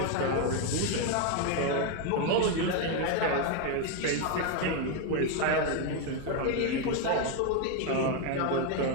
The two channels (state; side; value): different; both; correlation 0.01